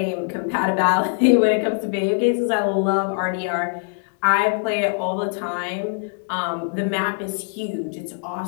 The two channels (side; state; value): right; silent; 61 dB below the other